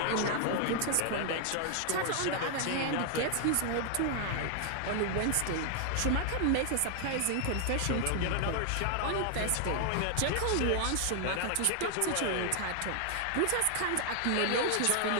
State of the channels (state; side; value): different; both; correlation 0.00